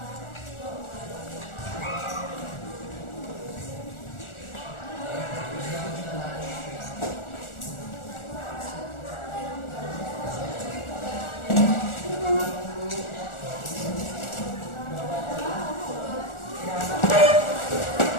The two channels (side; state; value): right; late; 1.4 ms